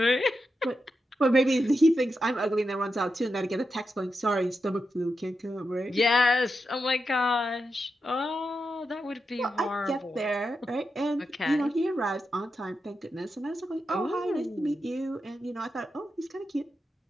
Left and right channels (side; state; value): both; normal; correlation 0.88